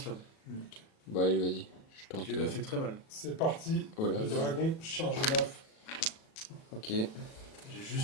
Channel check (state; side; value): late; right; 37 ms